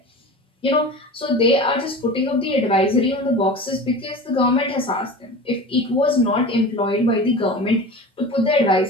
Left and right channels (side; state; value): both; normal; correlation 0.33